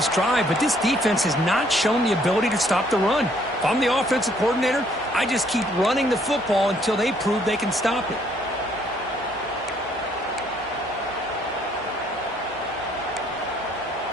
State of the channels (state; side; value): normal; both; correlation 0.65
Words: drive, but this defense has not shown the ability to stop the run. If I'm the offensive coordinator, I just keep running the football until they prove they can stop it.